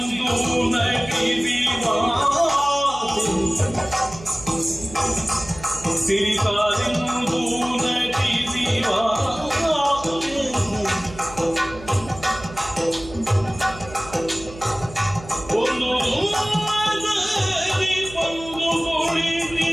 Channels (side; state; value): right; noise; hum, 16 dB below the sound